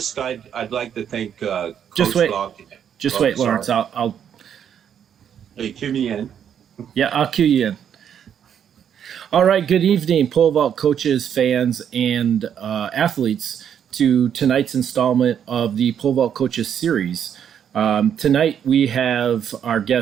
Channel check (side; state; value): left; quieter; 8.7 dB